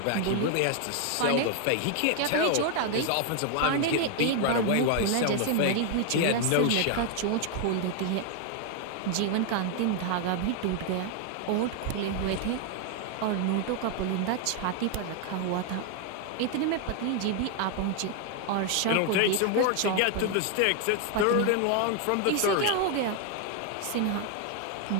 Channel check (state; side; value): different; both; correlation 0.00